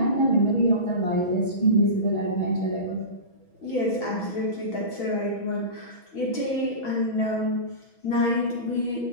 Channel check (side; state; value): right; late; 6.1 ms